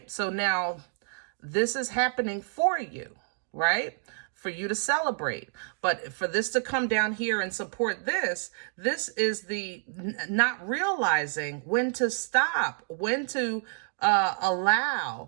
So now this is happening for you. Right? for you to celebrate. But for this to come down here and support this, this is the not realizing when to stop, when to allow,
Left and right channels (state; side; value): silent; left; digital silence